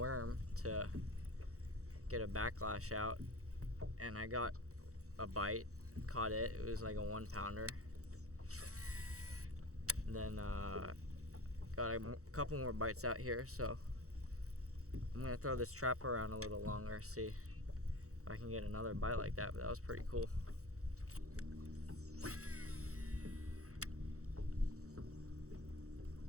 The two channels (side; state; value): left; late; 0.65 ms